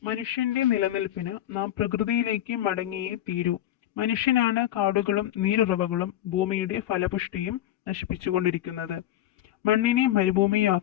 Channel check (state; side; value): quieter; right; 12.7 dB